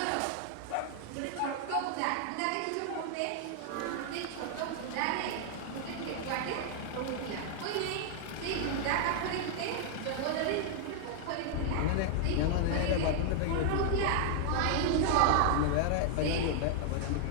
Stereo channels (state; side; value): different; both; correlation 0.00